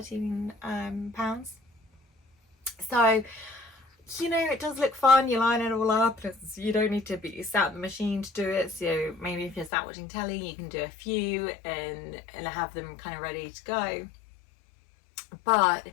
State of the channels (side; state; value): right; drops out; at 9.7 s